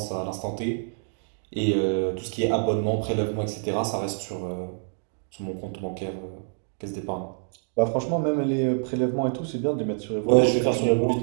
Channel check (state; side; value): silent; left; digital silence